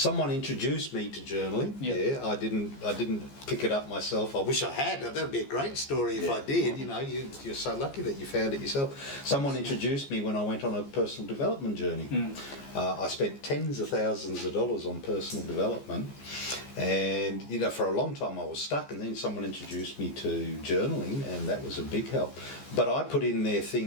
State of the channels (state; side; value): late; right; 14 ms